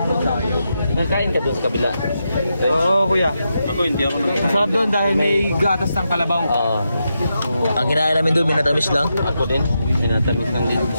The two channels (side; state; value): both; inverted; correlation -0.86